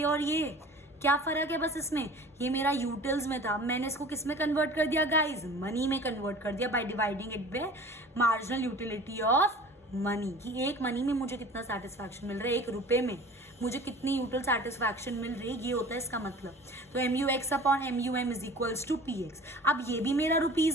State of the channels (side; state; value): both; normal; correlation 0.42